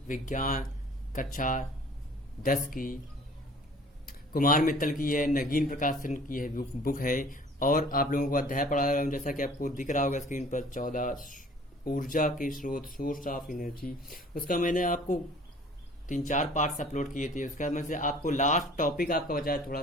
विज्ञान कक्षा 10 की कुमार मित्तल की है, नगीन प्रकाशन की है बुक है। और आप लोगों को अध्याय पढ़ा रहा हूँ, जैसा कि आपको दिख रहा होगा स्क्रीन पर 14 ऊर्जा के स्रोत, सोर्स ऑफ एनर्जी। उसका मैंने आपको 3-4 पार्ट्स अपलोड किए थे। उसका में से आपको लास्ट टॉपिक आपका बचा है थोड़ा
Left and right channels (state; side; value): normal; both; correlation 0.50